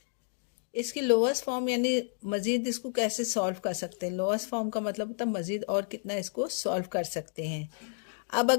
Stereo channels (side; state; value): right; silent; digital silence